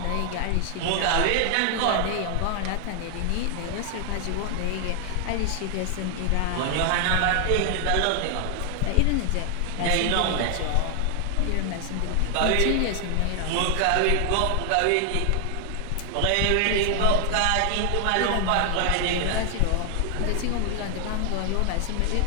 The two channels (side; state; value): both; different; correlation 0.00